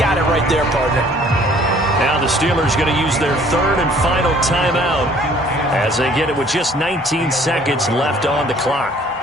it right there, partner. Now the Steelers going to use their 3rd and final timeout as they get it with just 19 seconds left on the clock.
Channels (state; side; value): normal; both; correlation 0.56